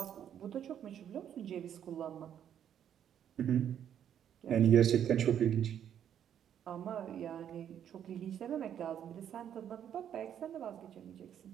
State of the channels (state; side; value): quieter; left; 9.5 dB